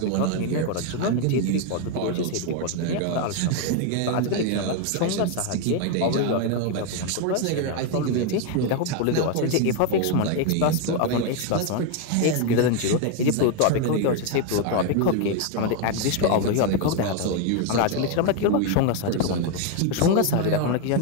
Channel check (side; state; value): both; different; correlation 0.01